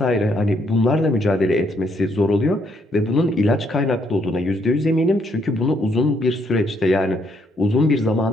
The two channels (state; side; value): normal; both; correlation 0.72